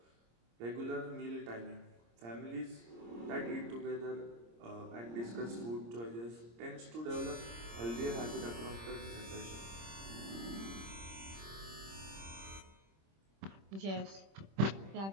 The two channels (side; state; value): left; late; 26 ms